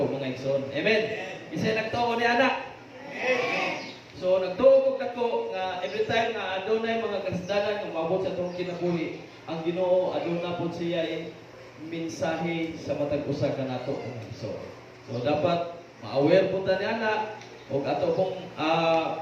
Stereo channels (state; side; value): identical; both; correlation 1.00